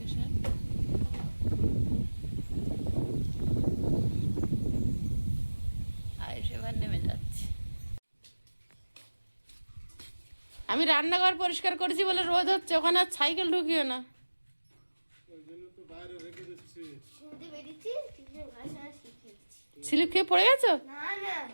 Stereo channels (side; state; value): both; inverted; correlation -1.00